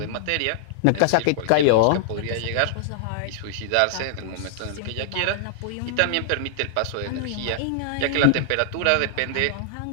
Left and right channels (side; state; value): both; different; correlation -0.01